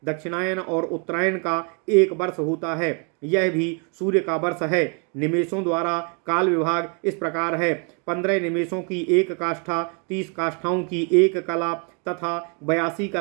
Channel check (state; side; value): quieter; left; 36.9 dB